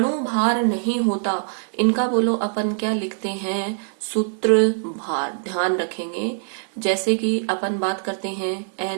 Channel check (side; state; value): left; silent; digital silence